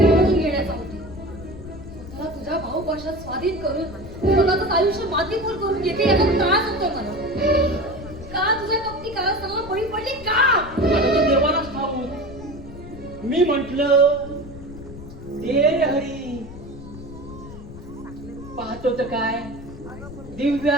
घेण्याचा होता. स्वतःला तुझ्या भाऊपाशात स्वाधीन करून स्वतःच आयुष्य मातीमोल करून घेते याचा त्रास होतोय मला. का तुझ्या कपटी कारस्थानाला बळी पडली का? आता ते देवालाच ठाऊक. मी म्हंटल दे रे हरी. पाहतो तर काय,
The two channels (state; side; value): noise; left; rumble, 14 dB below the sound